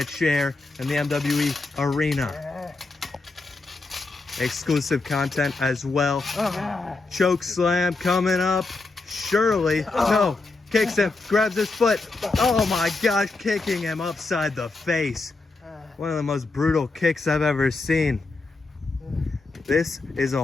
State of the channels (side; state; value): right; quieter; 3.5 dB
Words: chair in the MWE arena. Exclusive content as well. Choke slam coming up. Shirley, no, kicks him, grabs his foot. Oh my gosh, kicking him upside the face. One of the most brutal kicks I've ever seen. This is a